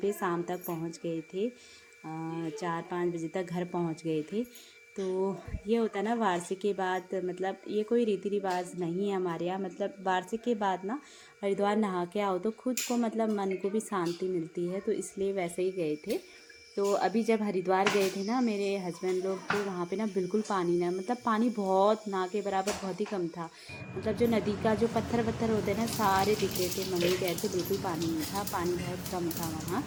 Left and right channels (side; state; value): both; identical; correlation 1.00